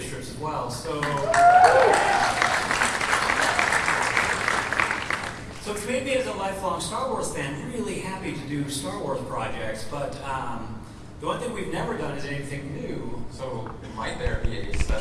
strips as well. So which made me, as a lifelong Star Wars fan, really happy happy to do Star Wars projects, but the one thing we've never done is anything new. So might there be a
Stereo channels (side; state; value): both; identical; correlation 1.00